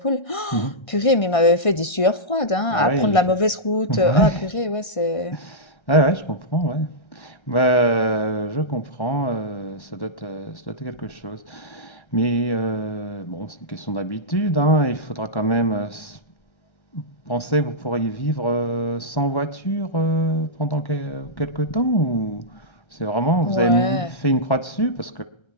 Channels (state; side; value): late; right; 1.5 ms